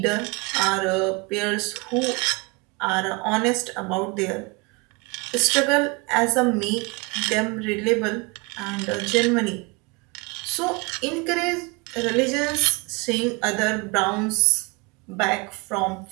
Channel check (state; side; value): quieter; left; 28.2 dB